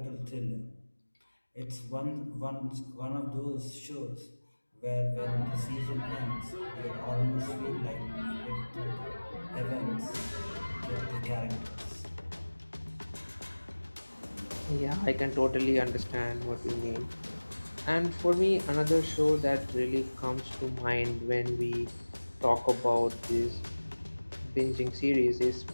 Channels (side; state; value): both; inverted; correlation -1.00